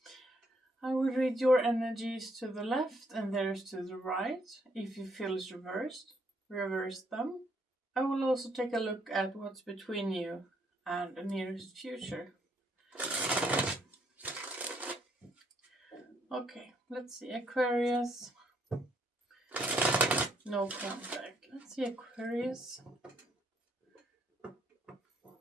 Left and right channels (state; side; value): normal; both; correlation 0.70